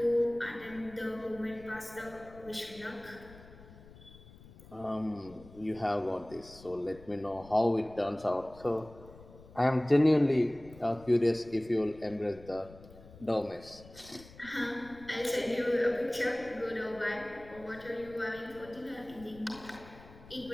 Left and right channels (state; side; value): noise; left; rumble, 20 dB below the sound